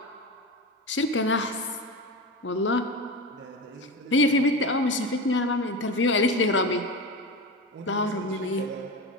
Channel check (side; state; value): both; normal; correlation 0.23